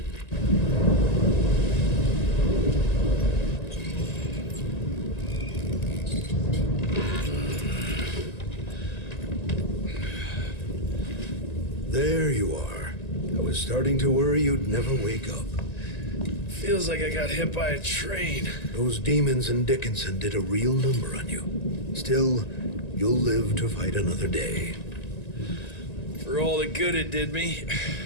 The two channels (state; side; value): late; right; 1.9 ms